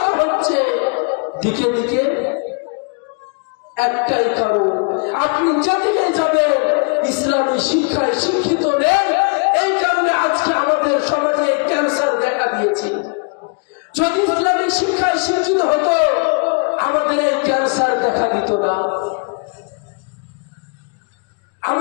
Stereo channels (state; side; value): quieter; right; 36.6 dB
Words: হচ্ছে? দিকে দিকে একটাই কারণ, আপনি যেদিকে যাবেন ইসলামী শিক্ষায় শিক্ষিত নেন। এই কারণে আজকে আমাদের সমাজে ক্যান্সার দেখা দিয়েছে। যদি ইসলামী শিক্ষায় শিক্ষিত হতো আমাদের এই ক্যান্সার দেখা দিত না।